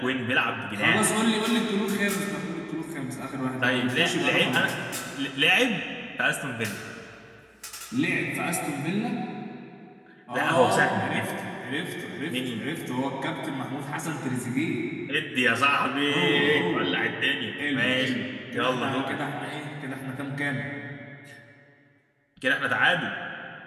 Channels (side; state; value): both; identical; correlation 1.00